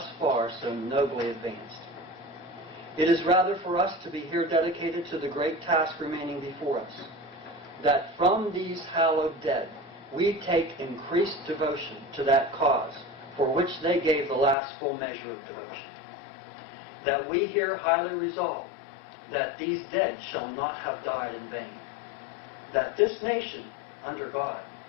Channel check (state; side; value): drops out; right; at 14.6 s